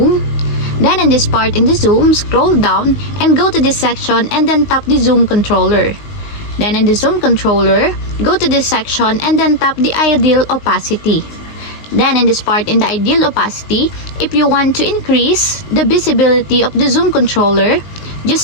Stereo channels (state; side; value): late; right; 19 ms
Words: Then in this part in the Zoom, scroll down and go to this section and then tap the Zoom controller. Then in the Zoom controller, go to this section and then tap the ideal opacity. Then in this part in the ideal opacity, if you want to increase the visibility of the Zoom controller,